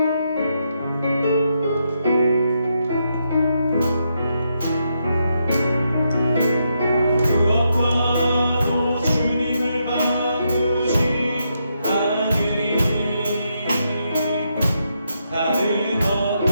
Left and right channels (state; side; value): inverted; both; correlation -0.80